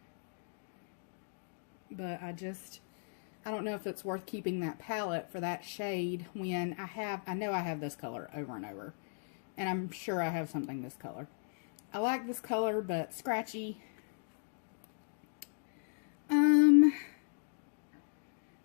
But I don't know if it's worth keeping that palette for that shade when I know I have this color over and over. And I'm sure I have something this color. I like this color, but scratchy. Alright,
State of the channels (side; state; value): right; silent; digital silence